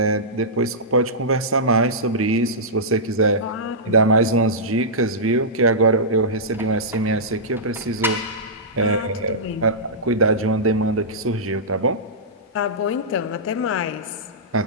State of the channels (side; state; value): both; normal; correlation -0.15